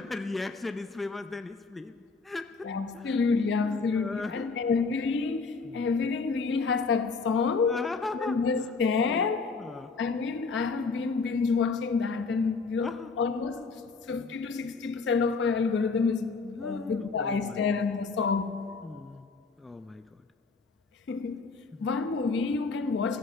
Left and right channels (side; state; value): right; quieter; 4.5 dB